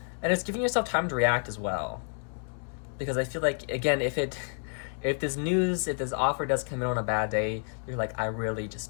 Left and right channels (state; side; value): silent; right; 58 dB below the other